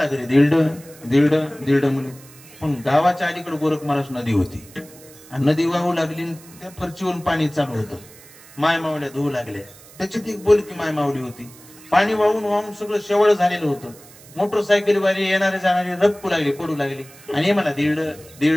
घरी. धिरड म्हणून. पण गावाच्या अलीकडे गोरख महाराज नदी होती, आणि नदी वाहू लागली, त्या फरचीवरून पाणी चालू होतं. माय मावल्या धुवू लागल्या. त्याच्यात एक बोलकी माय मावली होती. पाणी वाहून सगळं शेवळ झालेलं होतं. मोटरसायकलीवाली येणारे जाणारे रपकू लागले, पडू लागले. आणि हे मला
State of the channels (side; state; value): right; noise; hiss, 22 dB below the sound